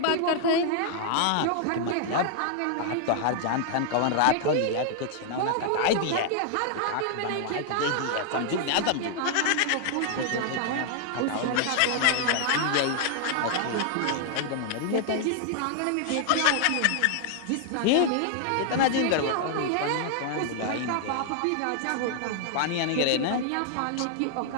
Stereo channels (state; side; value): different; both; correlation 0.00